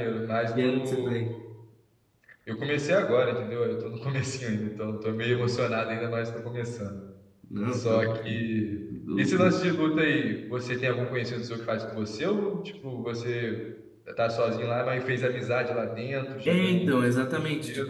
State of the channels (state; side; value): identical; both; correlation 1.00